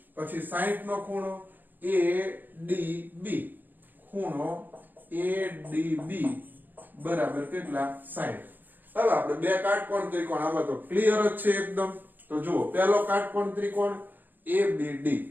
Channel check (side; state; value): left; late; 0.088 ms